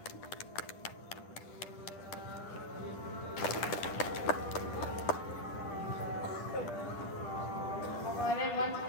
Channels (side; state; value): right; late; 10 ms